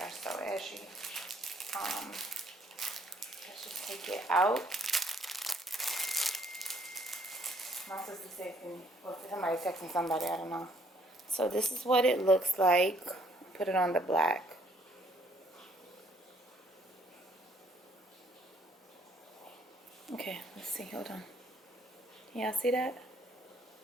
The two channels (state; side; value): normal; both; correlation 0.65